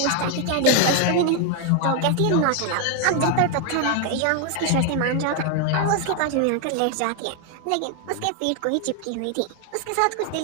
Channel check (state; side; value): different; both; correlation 0.01